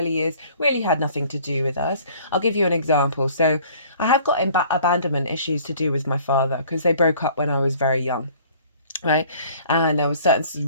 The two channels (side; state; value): both; inverted; correlation -0.53